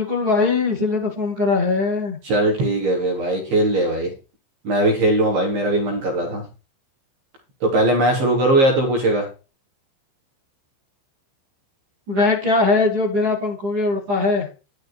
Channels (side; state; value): left; late; 15 ms